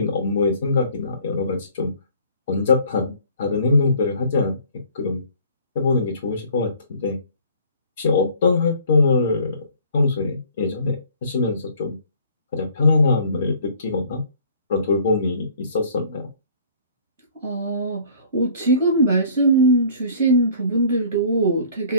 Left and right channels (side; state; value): both; inverted; correlation -0.54